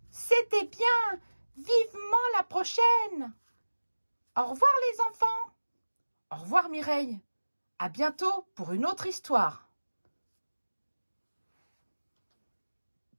C'était bien, vivement la prochaine. Au revoir les enfants. Au revoir Mireille. À bientôt pour une autre histoire.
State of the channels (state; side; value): inverted; both; correlation -1.00